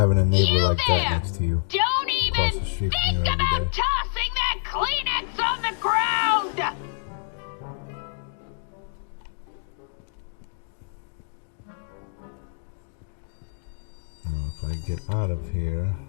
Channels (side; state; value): right; silent; digital silence